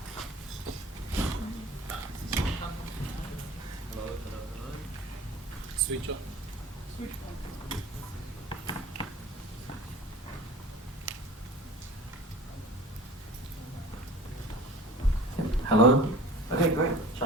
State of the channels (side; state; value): both; normal; correlation 0.41